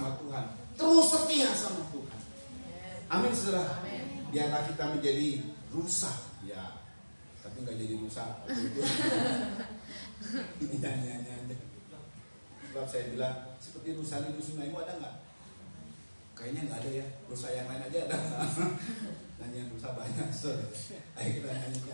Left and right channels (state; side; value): inverted; both; correlation -1.00